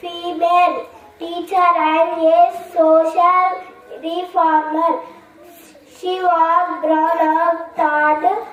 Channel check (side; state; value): both; identical; correlation 1.00